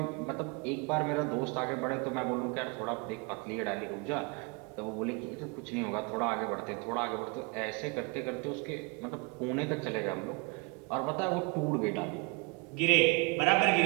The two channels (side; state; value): left; quieter; 28.4 dB